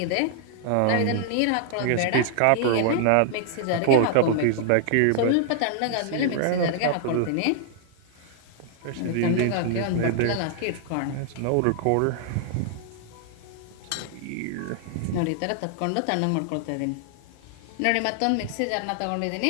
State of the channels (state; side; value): different; both; correlation 0.00